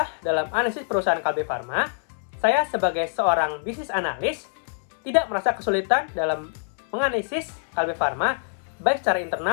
dalam analisis perusahaan Kalbe Farma, saya sebagai seorang bisnis analis tidak merasa kesulitan dalam menganalisis Kalbe Farma baik secara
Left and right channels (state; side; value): silent; right; 62 dB below the other